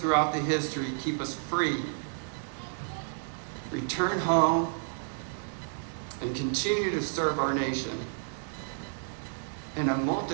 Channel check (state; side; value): silent; left; digital silence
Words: the history keep us free, return home, and continue to serve our nation in a